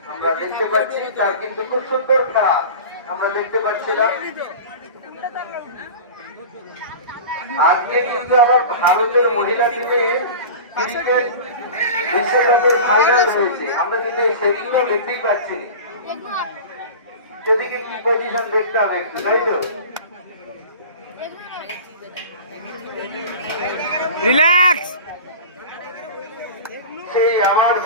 আমরা দেখতে পাচ্ছি তার কিন্তু খুব সুন্দর খেলা আমরা দেখতে পাচ্ছিলাম আজকে কিন্তু আমার ভারতের মহিলা টিমে ক্রিকেট বিশ্বকাপের ফাইনাল রয়েছে আমরা কিন্তু সেদিনও দেখতেই পাচ্ছি সেদিকে কি পজিশন দেখতে হবে একটু তাই তো রিল্যাক্স সেই আমার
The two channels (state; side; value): inverted; both; correlation -0.34